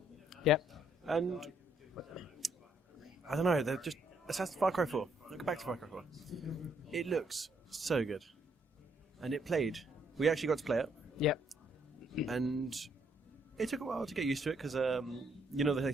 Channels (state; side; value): normal; both; correlation 0.70